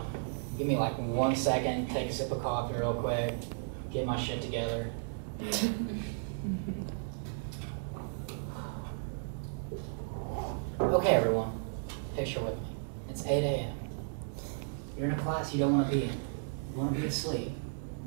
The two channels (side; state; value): left; silent; digital silence